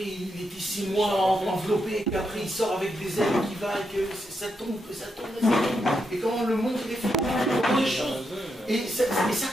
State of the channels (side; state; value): both; normal; correlation 0.83